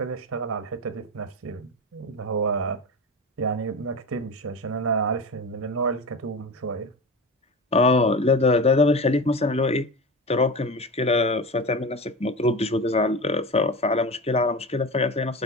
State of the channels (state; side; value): normal; both; correlation 0.26